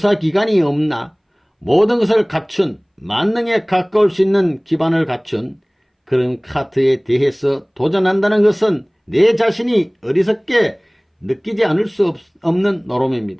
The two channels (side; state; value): both; identical; correlation 1.00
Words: 없나, 모든 것을 갖춘, 만능에 가까울 수 있는 기반을 갖춘 그런 카트에 대해서 도전한다는 것은 내 자신이 어리석게 느끼지 않을 수 없는